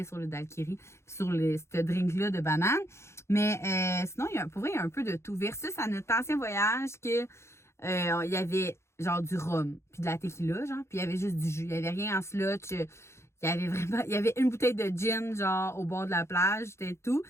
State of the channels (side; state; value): right; late; 0.13 ms